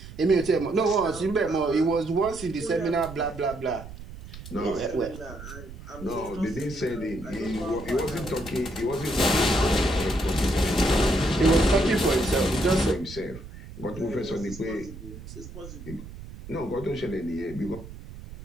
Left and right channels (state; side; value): noise; right; rumble, 14 dB below the sound